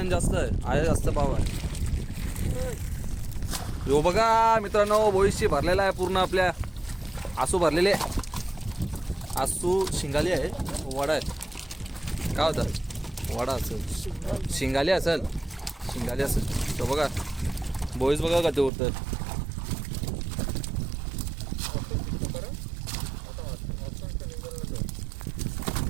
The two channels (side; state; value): left; drops out; at 18.7 s